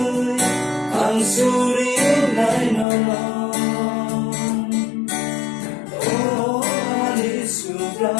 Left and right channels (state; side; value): drops out; right; at 2.9 s